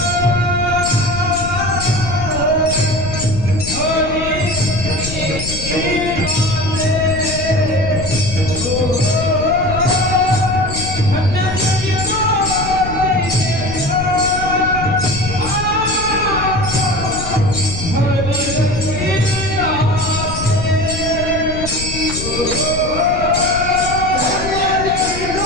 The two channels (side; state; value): left; noise; rumble, 8 dB below the sound